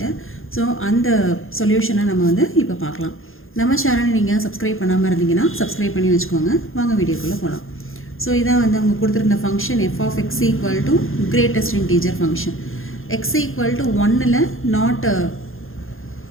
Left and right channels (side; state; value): right; late; 0.60 ms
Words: ஸோ அந்த சொல்யூஷனை நம்ம வந்து இப்போ பார்க்கலாம். நம்ம சேனலை நீங்கள் சப்ஸ்கிரைப் பண்ணாமல் இருந்தீங்கன்னா சப்ஸ்கிரைப் பண்ணி வச்சுக்கோங்க. வாங்க வீடியோக்குள்ளே போகலாம். ஸோ இதான் வந்து அவங்க கொடுத்துருந்த function f of x equal to greatest integer function. X equal to 1ல் நாட்